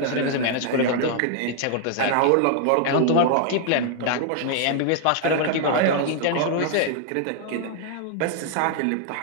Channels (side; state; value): both; different; correlation 0.00